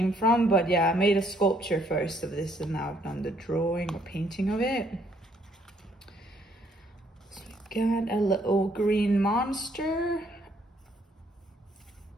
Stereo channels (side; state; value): both; normal; correlation 0.67